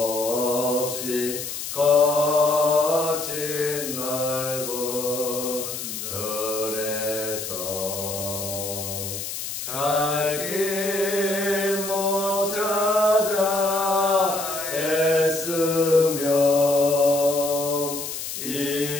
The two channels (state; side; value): noise; left; hiss, 6 dB below the sound